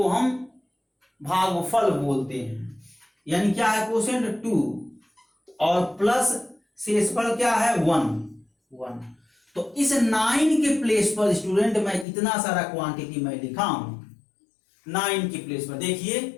हम भागफल बोलते हैं। यानी क्या है, कोसेंट 2 और प्लस शेषफल क्या है 1। तो इस 9 के प्लेस पर स्टूडेंट मैं इतना सारा क्वांटिटी मैं लिखा हूं 9 के प्लेस पर।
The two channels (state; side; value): drops out; right; at 12.1 s